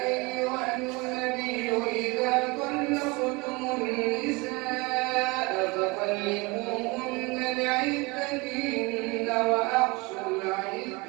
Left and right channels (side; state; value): left; quieter; 25.9 dB